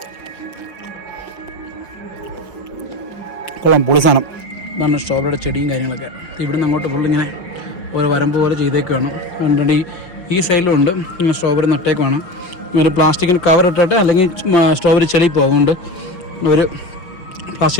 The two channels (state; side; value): late; right; 5.7 ms